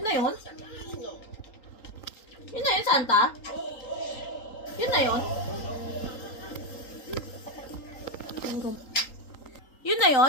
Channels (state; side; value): late; right; 3.8 ms